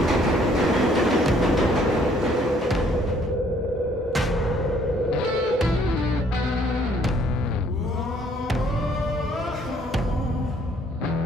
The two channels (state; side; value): normal; both; correlation 0.63